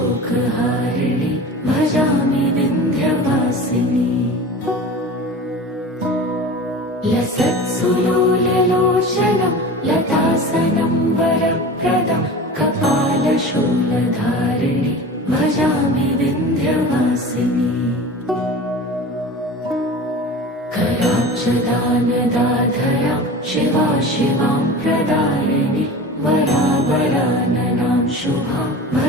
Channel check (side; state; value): both; normal; correlation 0.35